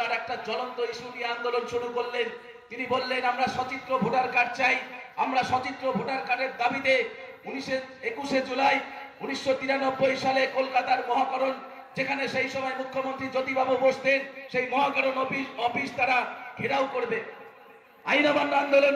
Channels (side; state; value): both; identical; correlation 1.00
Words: একটা জ্বলন্ত ইস্যু নিয়ে আন্দোলন শুরু করলেন। তিনি বললেন আমরা সচিত্র ভোটার কার্ড চাই, আমরা সচিত্র ভোটার কার্ডের দাবিতে 21শে জুলাই 1993 সালে কলকাতার মহাকরণ, যেখানে সেই সময় মুখ্যমন্ত্রী জ্যোতিবাবু বসতেন, সেই মহাকরণ অফিস তারা ঘেরাও করবে, আইন অমান্য আন্দোলন